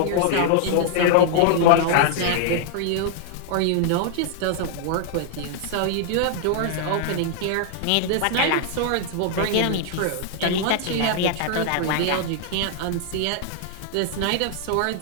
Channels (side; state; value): both; different; correlation -0.01